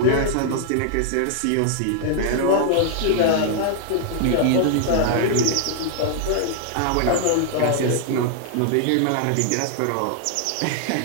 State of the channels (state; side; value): different; both; correlation -0.01